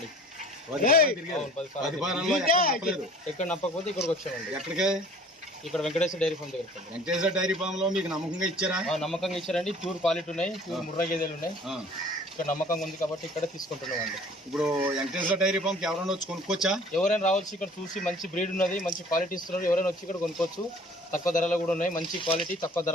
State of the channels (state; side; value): normal; both; correlation 0.49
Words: 10 ఫారాల్లో ఎక్కడ నప్పకపోతే ఇక్కడికి వచ్చామండి. ఎక్కడికే? ఇక్కడ వెంకటేశ్వర డైరీ ఫామ్ దగ్గర. వెంకటేశ్వర డైరీ ఫామ్ లో మీకు నమ్మకంగా ఇచ్చారా? నమ్మకంగా ఇచ్చారండి. ప్యూర్ క్వాలిటీ ఉన్నాయి, ప్యూర్ ముర్రా గేదెలు ఉన్నాయి. ఇక్కడ నమ్మకంగా ఉంది కాబట్టి ఇక్కడ తీసుకుంటున్నామండి. ఇప్పుడు వెంకటేశ్వర డైరీ ఫామ్ కి ఎవరైనా వచ్చి కొనుక్కోవచ్చా? ఎవరైనా రావచ్చు. ఇక్కడ చూసి మంచి బ్రీడ్ ఉన్నది, మంచి క్వాలిటీ ఇస్తున్నారు. ఎవరైనా వచ్చి ఇక్కడ కొనుక్కోవచ్చు. తక్కువ ధరలో కూడా ఉన్నాయి, మంచి క్వాలిటీ తక్కువ